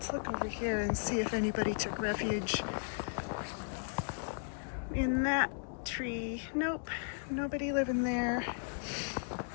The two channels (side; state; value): right; silent; digital silence